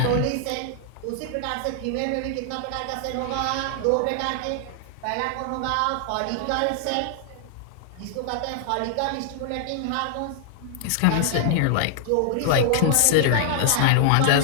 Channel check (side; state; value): both; different; correlation -0.01